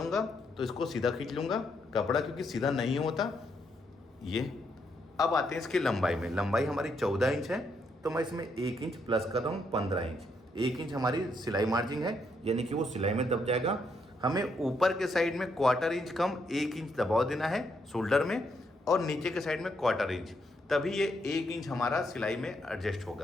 तो इसको सीधा खींच लूँगा कपड़ा, क्योंकि सीधा नहीं होता ये। अब आते हैं इसकी लंबाई में। लंबाई हमारी 14 इंच है, तो मैं इसमें 1 इंच प्लस कर रहा हूँ, 15 इंच। 1 इंच हमारी सिलाई मार्जिन है, यानी कि वो सिलाई में दब जाएगा। हमें ऊपर के साइड में 1/4 इंच कम 1 इंच दबाव देना है शोल्डर में, और नीचे के साइड में 1/4 इंच, तभी ये 1 इंच हमारा सिलाई में एडजस्ट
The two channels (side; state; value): both; normal; correlation 0.76